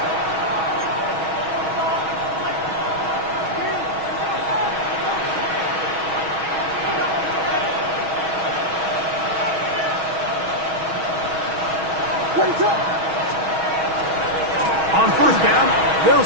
On first down, they'll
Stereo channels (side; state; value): left; late; 6.3 ms